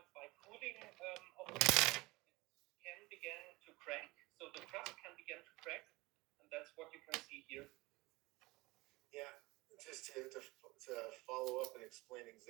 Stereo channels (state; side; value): quieter; left; 22.0 dB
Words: by cooling of the crust, it can begin to crack. So the crust can begin to crack, and that's what you can see here. Yeah, just to follow up and explain